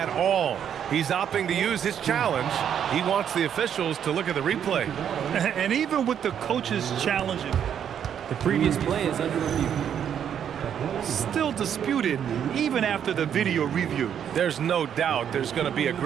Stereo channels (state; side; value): quieter; left; 8.8 dB